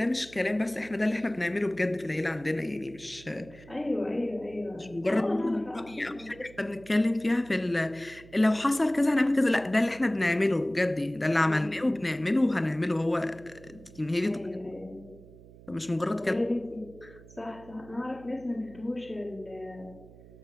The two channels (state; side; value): noise; right; hum, 21 dB below the sound